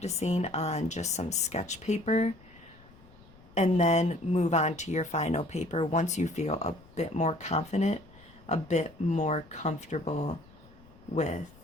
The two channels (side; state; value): left; noise; rumble, 24 dB below the sound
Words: on just some sketch paper and then move on to your final paper once you feel a bit more confident, a bit more comfortable with